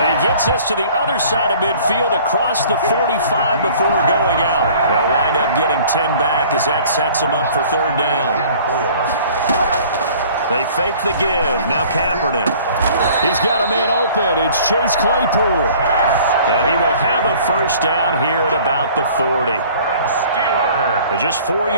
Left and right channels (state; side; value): inverted; both; correlation -0.50